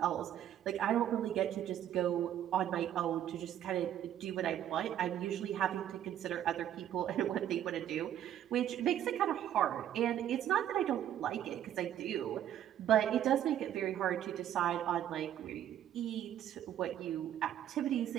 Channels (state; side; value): quieter; left; 11.0 dB